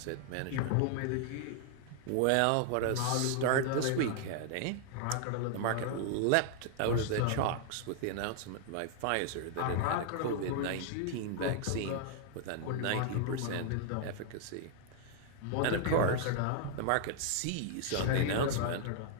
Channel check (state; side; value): different; both; correlation 0.00